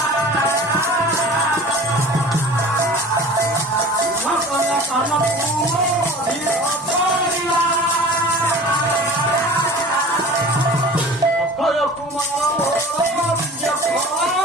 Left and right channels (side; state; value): both; normal; correlation 0.41